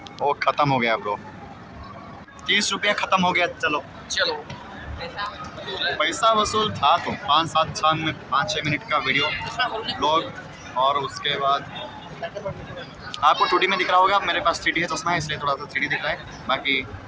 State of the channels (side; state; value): both; identical; correlation 1.00